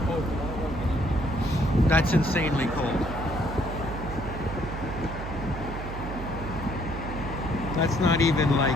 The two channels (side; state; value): right; noise; hum, 7 dB below the sound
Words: That's insanely cold. That's not even